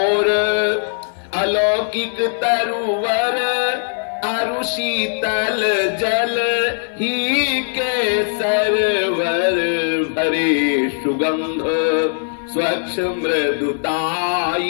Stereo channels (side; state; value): right; silent; digital silence